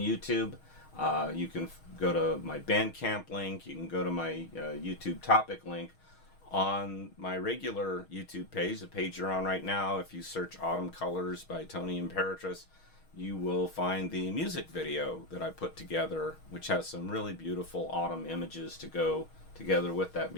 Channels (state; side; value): late; right; 6.3 ms